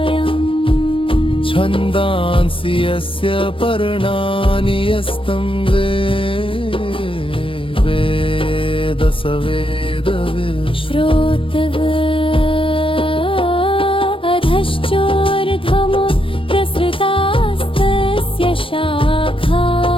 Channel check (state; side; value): late; right; 0.26 ms